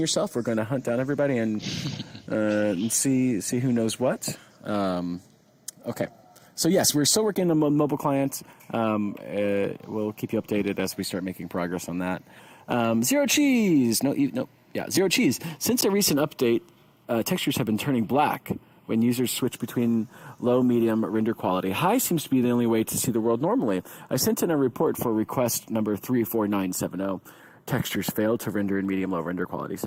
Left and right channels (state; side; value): identical; both; correlation 1.00